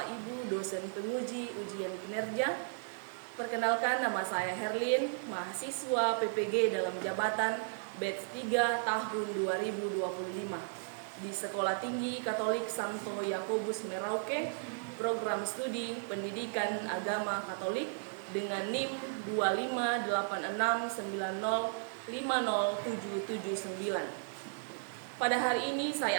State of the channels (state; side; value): silent; left; digital silence